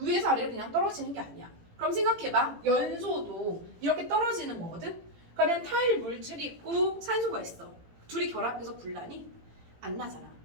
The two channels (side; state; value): left; late; 18 ms